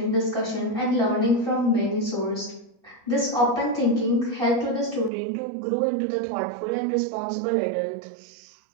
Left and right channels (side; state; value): left; drops out; at 5.1 s